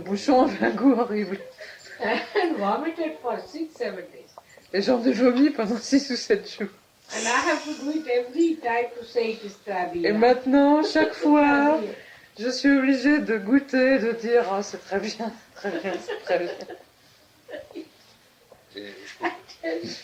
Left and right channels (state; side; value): identical; both; correlation 1.00